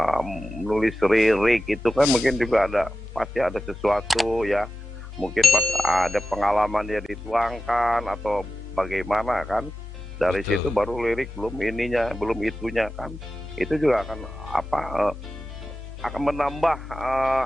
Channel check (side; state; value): both; normal; correlation 0.92